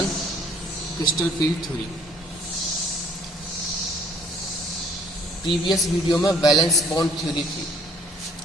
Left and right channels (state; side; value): normal; both; correlation 0.59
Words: crystal field theory. Previous video में valence bond theory थी,